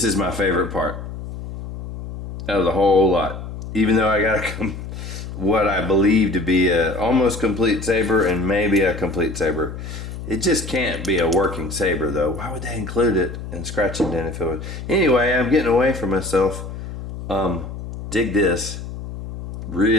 is my favorite part out of the whole lot. Even though I got what I believe to be a almost complete Saber and maybe a complete Saber. It just can't be a working Saber though. Why would they include it in scratch and dent if it was? Anyway, I'm getting away from myself. Dig this.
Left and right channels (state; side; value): noise; left; hum, 9 dB below the sound